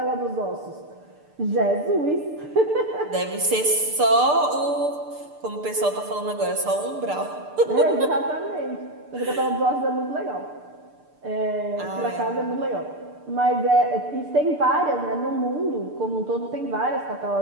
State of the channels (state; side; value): late; left; 6.7 ms